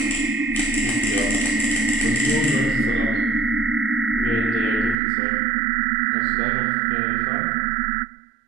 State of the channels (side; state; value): left; drops out; at 5.0 s